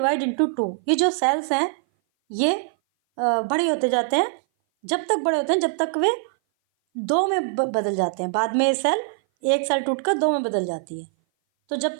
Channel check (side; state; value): left; silent; 58 dB below the other